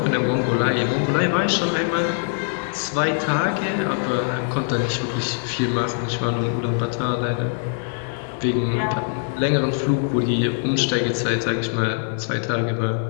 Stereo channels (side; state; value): right; silent; 64 dB below the other